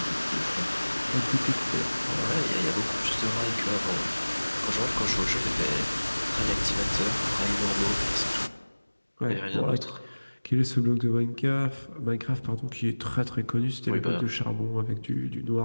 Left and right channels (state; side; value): inverted; both; correlation -1.00